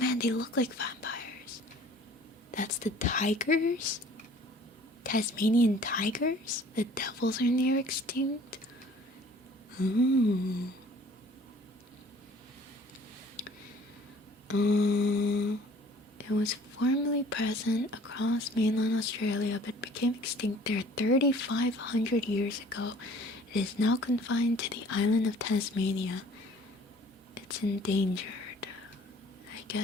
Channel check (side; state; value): both; normal; correlation 0.52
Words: they look like vampires. That's the tigers? Tasmanian tigers? The devils are near extinct? Ooh. It was formerly present across mainland Australia but became extinct there 3,500 years ago. It is now confined to the island of Tasmania. It's endangered. I